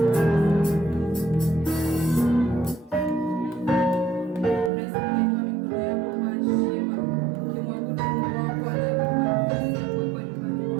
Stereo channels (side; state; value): left; drops out; at 4.7 s